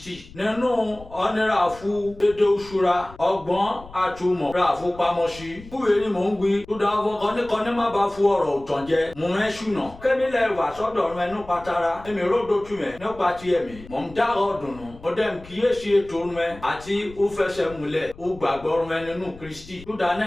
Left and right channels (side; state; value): left; noise; rumble, 19 dB below the sound